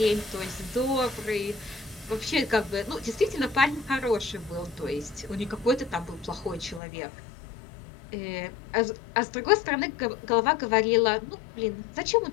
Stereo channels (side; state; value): right; drops out; at 6.8 s